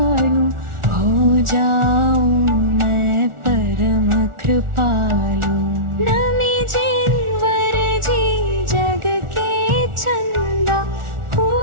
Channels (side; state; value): left; late; 1.4 ms